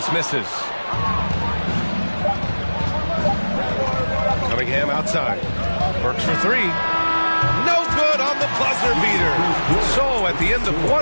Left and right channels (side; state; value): both; inverted; correlation -1.00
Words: misses. Cunningham outside. Burks for 3. No good on the buzzer beater. So at the end of